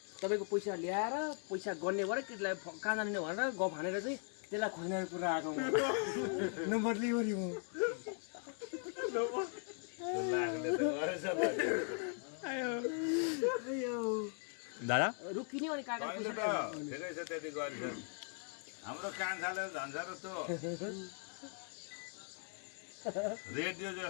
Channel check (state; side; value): silent; right; 52 dB below the other